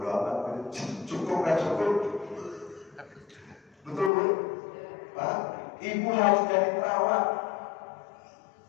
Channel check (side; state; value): right; drops out; at 4.1 s